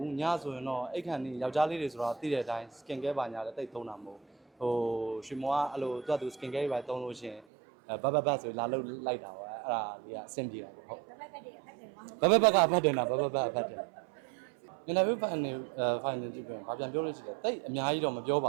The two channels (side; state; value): left; drops out; at 7.5 s